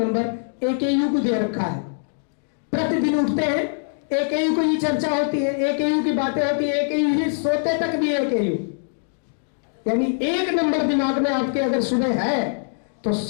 AKU को दे रखा है। प्रतिदिन उठते हैं, AKU को ही चर्चा होती है, AKU की बातें होती है, AKU ही सोते तक भी AKU, यानी 1 नंबर दिमाग में आपके अगर सुबह है तो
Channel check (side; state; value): right; silent; digital silence